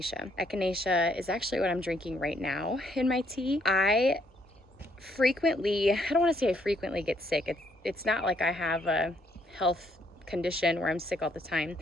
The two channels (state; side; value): normal; both; correlation 0.70